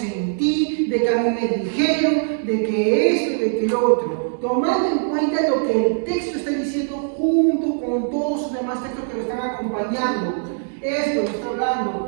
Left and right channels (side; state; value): left; silent; digital silence